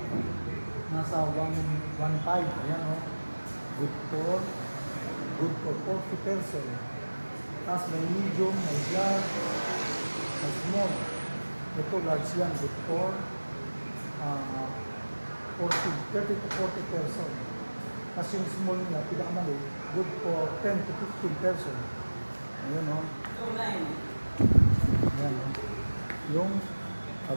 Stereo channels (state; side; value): inverted; both; correlation -1.00